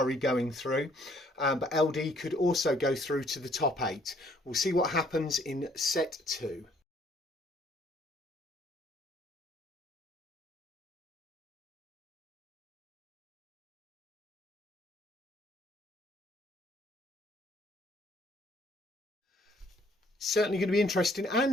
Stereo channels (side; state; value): both; normal; correlation 0.63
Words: going through, but LD could also go through to the top 8. We'll see what happens in set 2. Certainly going to be interesting,